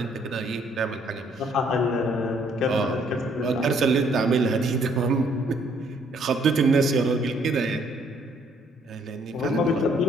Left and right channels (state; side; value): normal; both; correlation 0.65